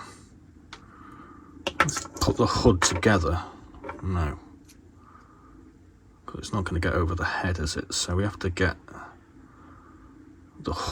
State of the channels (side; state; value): both; identical; correlation 1.00